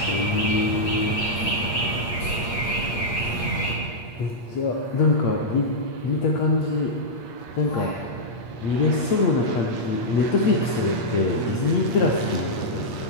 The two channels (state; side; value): late; right; 8.6 ms